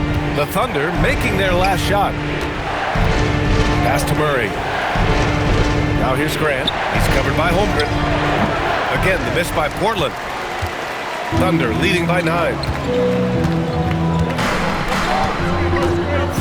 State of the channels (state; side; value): identical; both; correlation 1.00